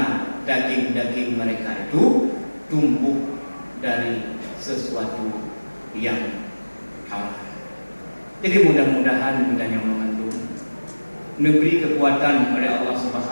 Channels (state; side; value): inverted; both; correlation -1.00